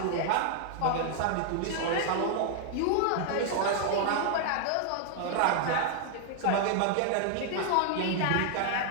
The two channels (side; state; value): both; different; correlation 0.00